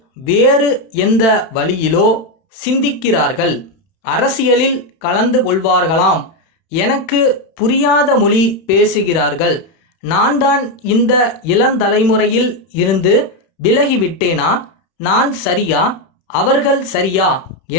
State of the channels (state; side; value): late; right; 31 ms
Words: வேறு எந்த வழியிலோ சிந்திக்கிறார்கள். அரசியலில் கலந்து கொள்வார்களாம். எனக்கு புரியாத மொழி பேசுகிறார்கள். நான் தான் இந்த இளந்தலைமுறையில் இருந்து விலகிவிட்டேனா? நான் சரியா, அவர்கள் சரியா